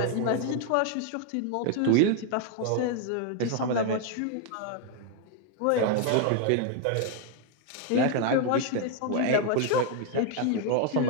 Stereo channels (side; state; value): both; different; correlation 0.00